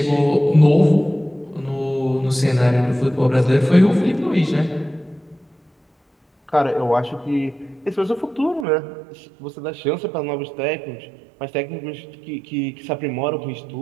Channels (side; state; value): left; drops out; at 8.7 s